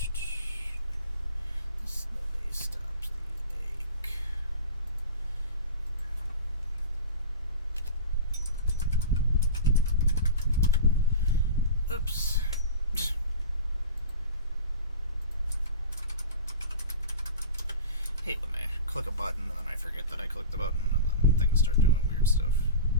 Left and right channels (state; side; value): inverted; both; correlation -0.32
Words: Oops. I click a button and then I forget that I clicked the button and then things start doing weird stuff.